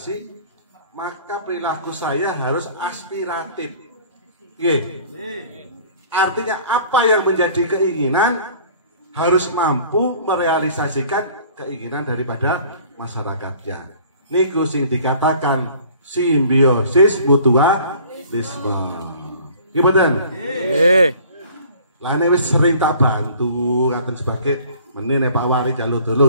maka perilaku saya harus aspiratif. Artinya apa yang menjadi keinginan harus mampu merealisasikan keinginan daripada masyarakatnya. Niku sing dikatakan simbiosis mutualisme. Gimana? Lah ini wis sering tak bantu ngaten sebagai menene Pak Wari jalur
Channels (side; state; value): both; inverted; correlation -0.51